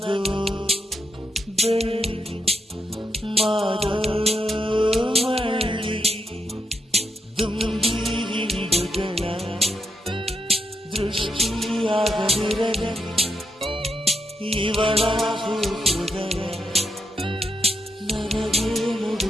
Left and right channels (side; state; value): both; normal; correlation 0.81